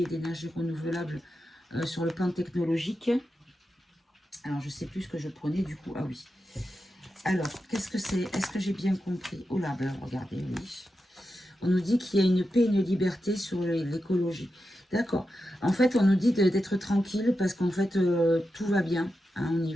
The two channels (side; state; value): both; normal; correlation 0.89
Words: et d'énergie renouvelable sur le plan technologique, alors je ne sais plus ce que je prenais du coup. Ah oui. Alors, qu'est-ce que c'est? Est-ce que j'ai bien compris? Oh là, ben regardez, oui. On nous dit qu'il y a une paix et une liberté sur l'écologie. D'accord. En fait, on nous dit d'être tranquille parce qu'en fait, tout va bien hein, au